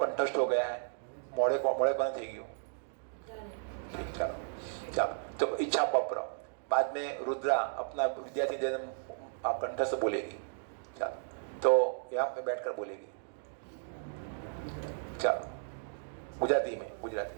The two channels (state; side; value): silent; left; digital silence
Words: हो गया है? मोड़े कौन थी गयो? ठीक, चलो तो इच्छा पत्र बाद में रुद्रा अपना विद्यार्थी निवेदन कंठस्थ बोलेगी। चलो तो यहाँ पे बैठकर बोलेगी। चलो गुजराती में।